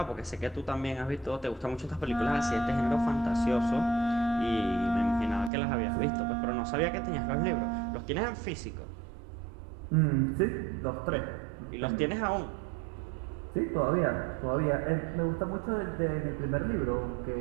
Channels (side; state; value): left; drops out; at 5.5 s